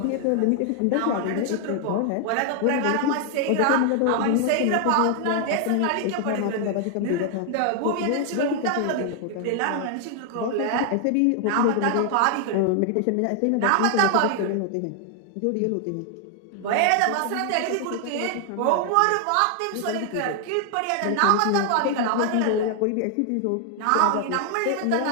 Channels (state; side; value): different; both; correlation 0.00